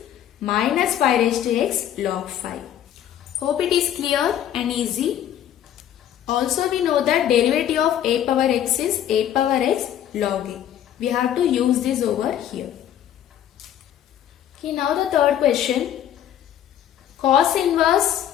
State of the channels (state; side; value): quieter; right; 10.8 dB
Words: minus 5 raised to x log 5. Hope it is clear and easy. Also we know that derivative of a power x is a power x log a. We have to use this over here. Okay, now the third question. Cos inverse